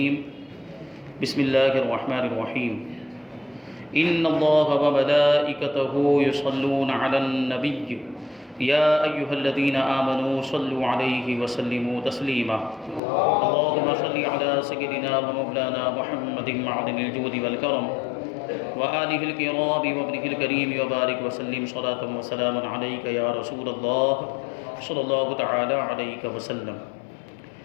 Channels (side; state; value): right; drops out; at 13.0 s